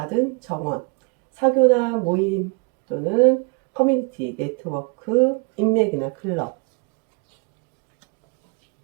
정원, 사교나 모임 또는 커뮤니티, 네트워크, 인맥이나 클럽.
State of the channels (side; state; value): left; quieter; 33.2 dB